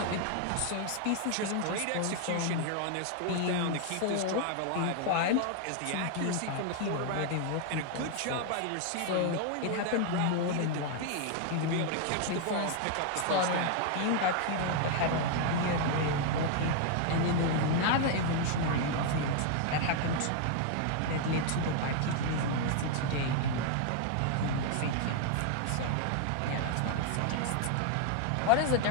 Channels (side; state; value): both; different; correlation 0.00